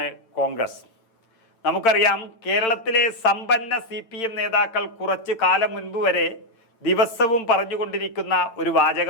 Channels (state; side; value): late; right; 8.8 ms